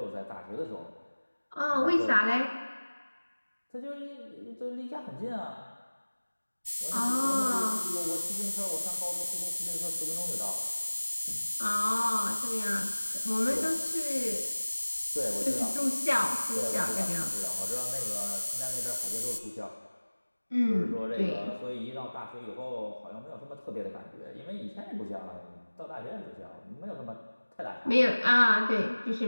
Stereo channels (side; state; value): both; inverted; correlation -1.00